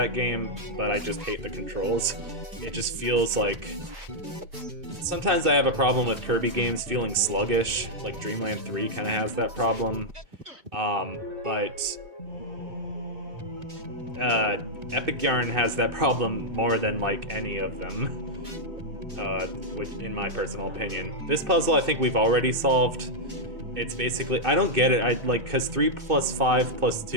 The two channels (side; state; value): left; late; 2.2 ms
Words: game, but I just hate the controls. It just feels like Sometimes I have a problem with Kirby games feeling sluggish, like Dreamland 3 kind of has that problem. But Epic Yarn has that problem more than like any of them, which, in my personal opinion. This puzzle I think we've already solved. It's basically, I don't get it, because 3 plus 5 plus